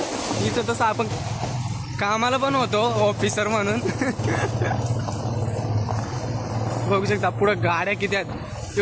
इथं तसं आपण कामाला पण होतो ऑफिसर म्हणून. बघू शकता पुढे गाड्या किती आहेत.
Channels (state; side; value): identical; both; correlation 1.00